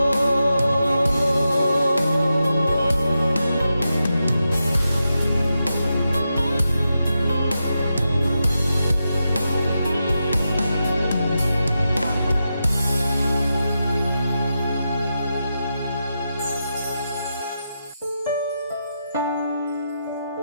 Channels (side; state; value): both; inverted; correlation -0.88